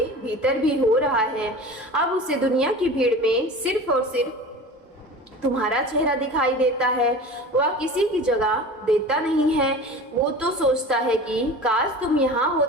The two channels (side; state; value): both; normal; correlation 0.36